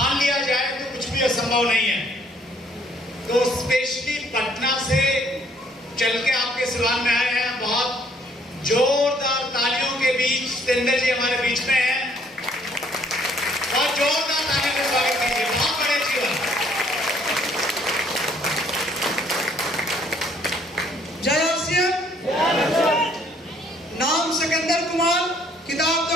लिया जाए तो कुछ भी असंभव नहीं है। तो स्पेशली पटना से चल के आपके सिवान में आए हैं। बहुत जोरदार तालियों के बीच सतेंद्र जी हमारे बीच में हैं। बहुत जोरदार तालियों का स्वागत कीजिए। बहुत बड़े जीवन। जय आरसीएम। नाम सिकंदर कुमार, किताब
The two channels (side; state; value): both; normal; correlation 0.63